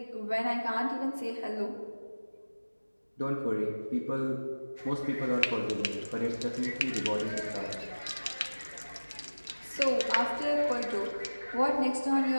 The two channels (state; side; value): inverted; both; correlation -1.00